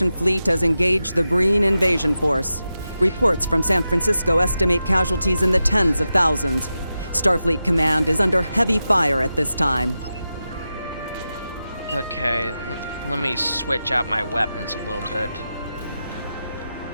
fleet has engaged the Breen invasion force. Reports from San Francisco estimate casualties in the tens of thousands. Starfleet Command is under heavy fire at this time. Okay, let me switch out my weapons a little bit.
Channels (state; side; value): inverted; both; correlation -0.91